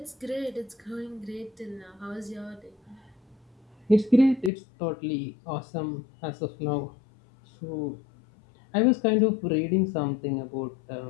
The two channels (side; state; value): right; drops out; at 4.5 s